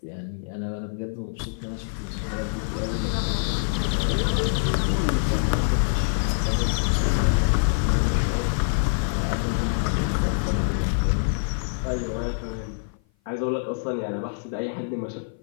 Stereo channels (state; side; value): silent; right; 56 dB below the other